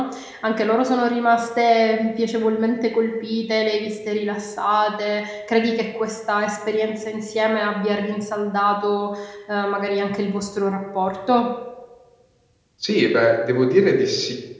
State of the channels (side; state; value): both; identical; correlation 1.00